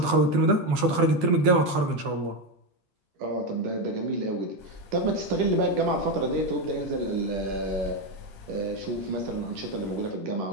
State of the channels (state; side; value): late; left; 11 ms